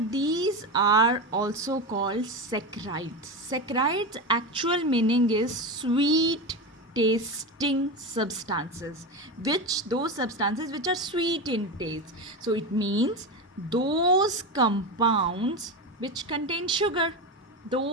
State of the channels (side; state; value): both; normal; correlation 0.19